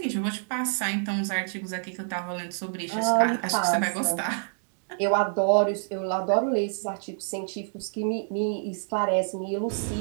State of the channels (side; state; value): left; silent; digital silence